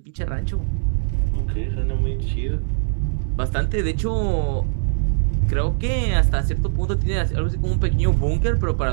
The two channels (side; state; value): left; silent; digital silence